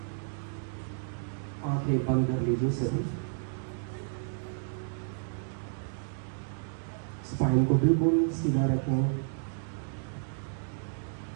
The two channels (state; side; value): silent; left; digital silence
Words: आंखें बंद कर लीजिए सभी। स्पाइन को बिल्कुल सीधा रखें।